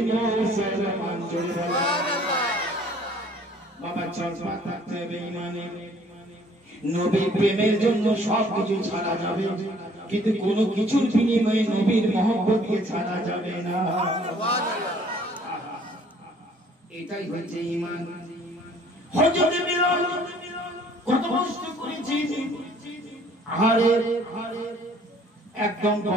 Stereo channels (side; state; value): both; normal; correlation 0.57